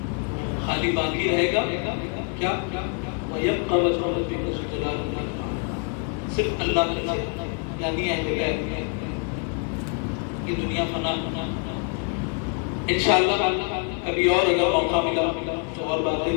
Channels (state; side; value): quieter; right; 39.8 dB